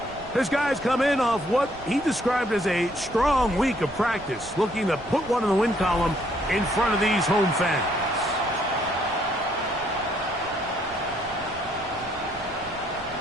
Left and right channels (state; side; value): noise; right; rumble, 19 dB below the sound